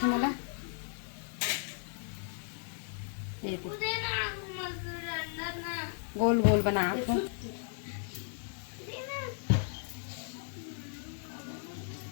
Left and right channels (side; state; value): right; silent; digital silence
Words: मला ये गोल गोल बना